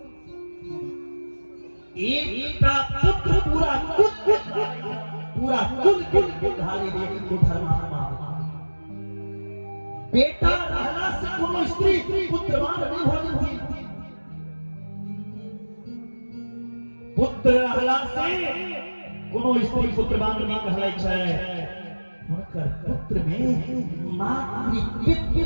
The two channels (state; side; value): inverted; both; correlation -1.00